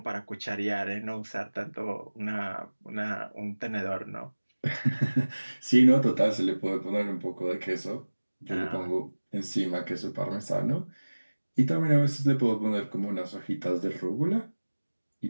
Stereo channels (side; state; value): both; inverted; correlation -1.00